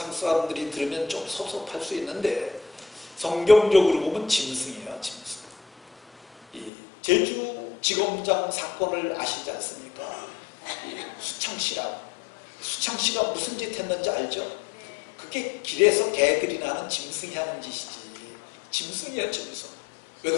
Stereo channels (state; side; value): drops out; right; at 6.7 s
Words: 사람들이 들으면 좀 섭섭할 수 있는데, 성경적으로 보면 짐승이에요. 짐승. 이 제주지검장 사건을 아시지 않습니까? 수창씨가 무슨 짓 했는지 알죠? 그게 길에서 개들이나 하는 짐승이 하는 짓이지. 짐승이에요, 짐승. 왜